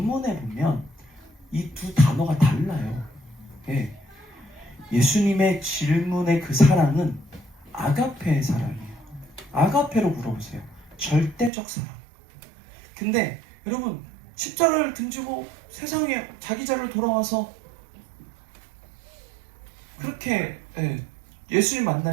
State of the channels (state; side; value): drops out; left; at 11.5 s